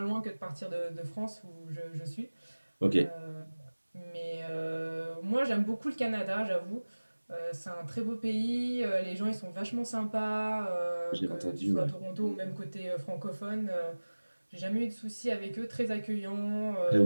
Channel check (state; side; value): inverted; both; correlation -1.00